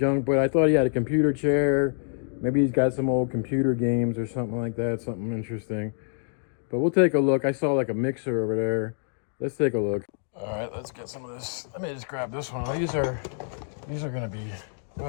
But I thought he had a computer chair. Maybe he's got some old computer games or something like that. Something interesting. But we'll take a look. I saw like a mixer over there. Let's take a look. All right, let's get some of this. Let me just grab this one. These are gonna be,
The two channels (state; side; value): silent; right; digital silence